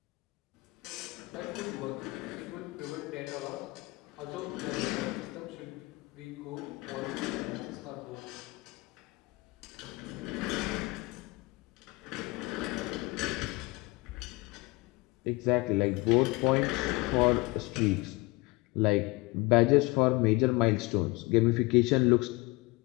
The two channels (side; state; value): right; quieter; 23.4 dB